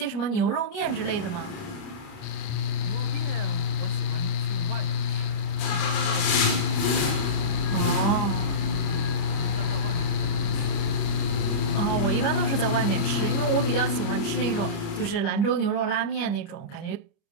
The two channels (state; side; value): late; right; 29 ms